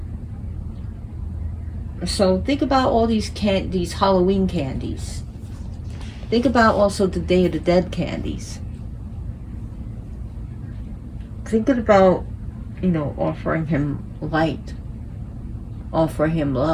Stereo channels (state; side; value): identical; both; correlation 1.00